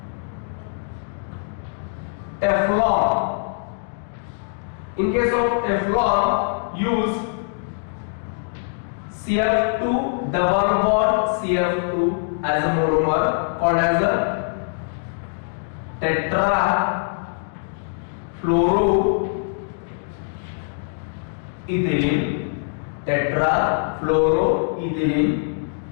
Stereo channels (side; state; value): right; silent; digital silence